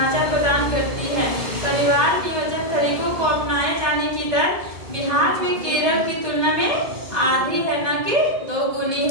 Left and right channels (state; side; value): late; left; 2.0 ms